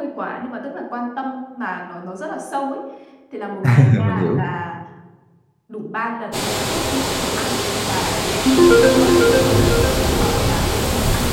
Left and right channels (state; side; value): identical; both; correlation 1.00